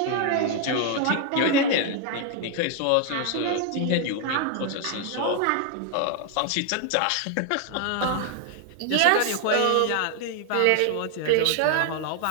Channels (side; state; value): both; different; correlation 0.00